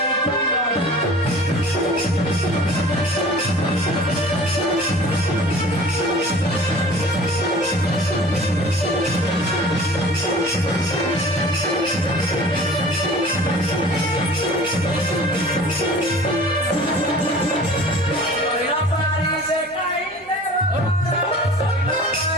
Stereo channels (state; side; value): normal; both; correlation 0.44